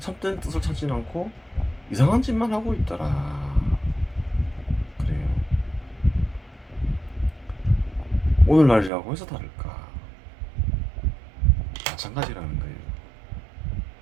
참된 뜻을 찾지 않고 이상한 짓만 하고 있더라. 그래요. 오늘날이라고 해서 다를까? 마찬가지라는 거예요.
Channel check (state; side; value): drops out; left; at 8.9 s